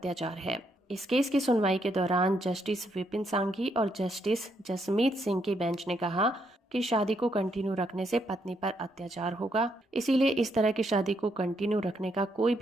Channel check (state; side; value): normal; both; correlation 0.76